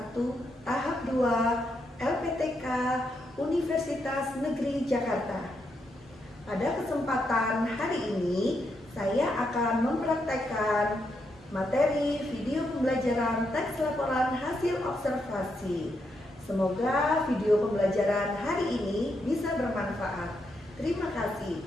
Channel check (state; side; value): normal; both; correlation 0.81